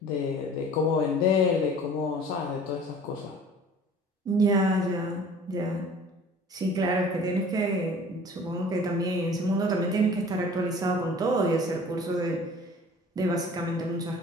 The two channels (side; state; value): both; normal; correlation 0.47